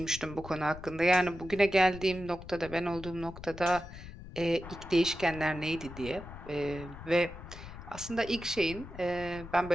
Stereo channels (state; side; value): noise; left; rumble, 13 dB below the sound